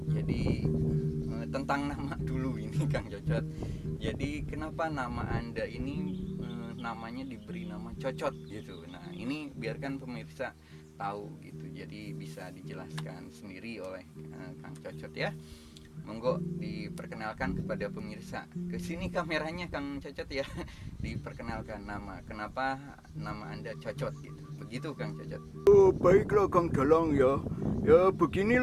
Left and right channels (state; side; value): identical; both; correlation 1.00